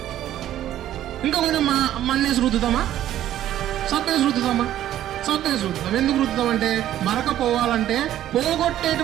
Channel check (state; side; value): quieter; left; 12.3 dB